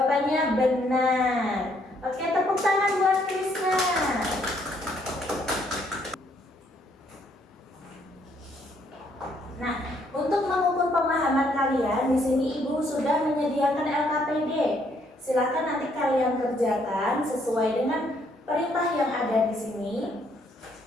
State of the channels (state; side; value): normal; both; correlation 0.69